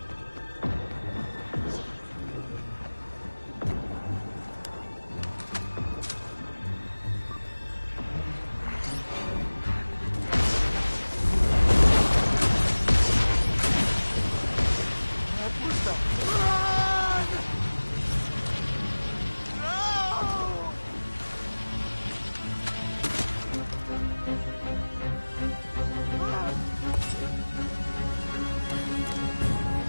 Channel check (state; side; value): inverted; both; correlation -1.00